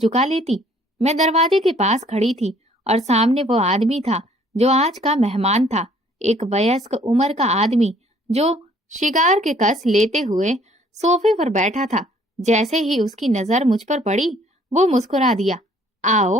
लेती। मैं दरवाजे के पास खड़ी थी और सामने वो आदमी था जो आज का मेहमान था, एक वयस्क उम्र का आदमी जो शिकार के कस लेते हुए सोफे पर बैठा था। जैसे ही उसकी नजर मुझ पर पड़ी, वो मुस्कुरा दिया।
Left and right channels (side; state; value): both; normal; correlation 0.60